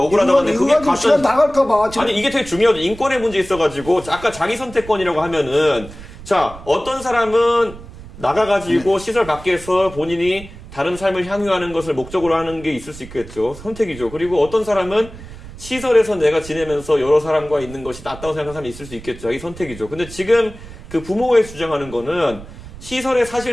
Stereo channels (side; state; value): right; noise; rumble, 16 dB below the sound